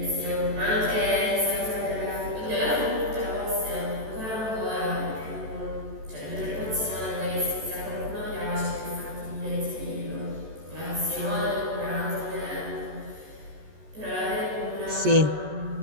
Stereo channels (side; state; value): left; late; 14 ms